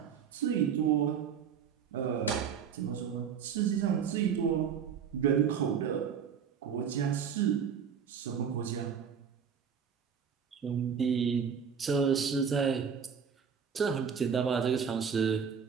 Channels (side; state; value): left; quieter; 7.2 dB